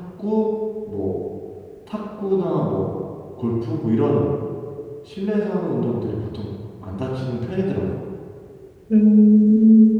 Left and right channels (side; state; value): both; identical; correlation 1.00